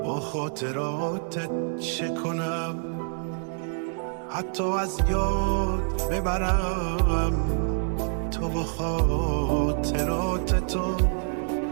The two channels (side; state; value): left; silent; digital silence